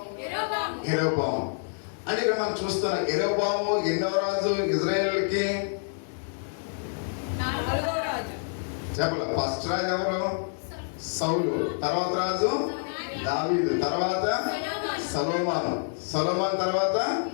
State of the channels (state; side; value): silent; right; digital silence